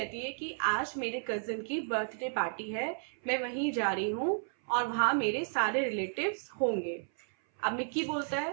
है कि आज मेरे कजिन की बर्थडे पार्टी है, मैं वहीं जा रही हूँ और वहां मेरे सारे रिलेटिव्स होंगे। अब मिक्की बोलता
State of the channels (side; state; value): left; silent; 56 dB below the other